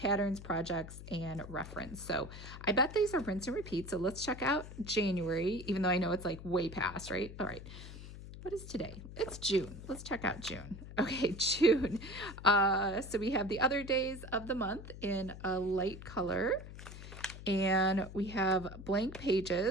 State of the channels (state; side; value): noise; left; hum, 13 dB below the sound